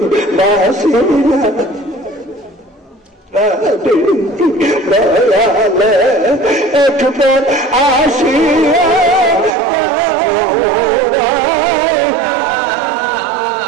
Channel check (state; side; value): drops out; left; at 9.5 s